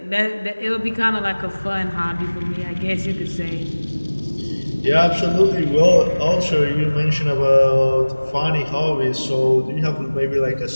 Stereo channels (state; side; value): inverted; both; correlation -1.00